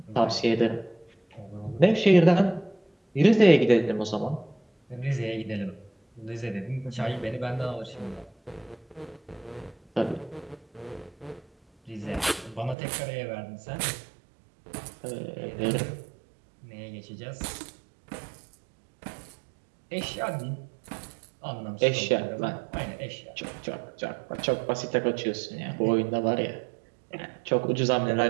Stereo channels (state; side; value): drops out; left; at 12.8 s